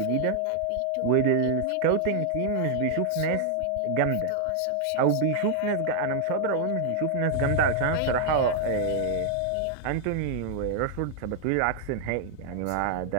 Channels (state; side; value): different; both; correlation 0.00